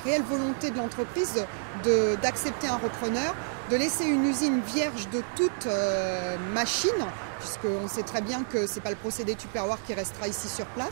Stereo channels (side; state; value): left; silent; digital silence